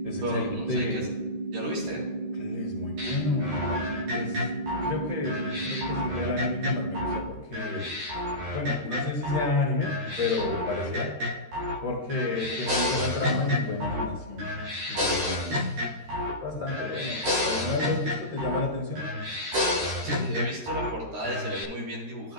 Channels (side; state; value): left; late; 13 ms